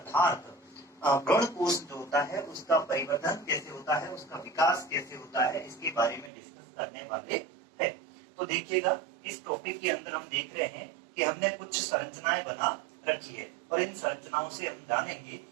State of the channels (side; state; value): left; drops out; at 6.3 s